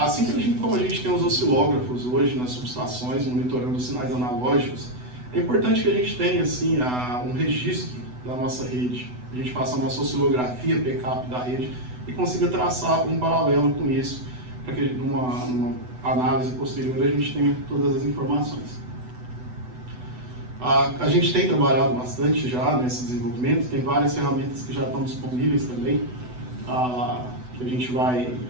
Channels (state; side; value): late; left; 8.0 ms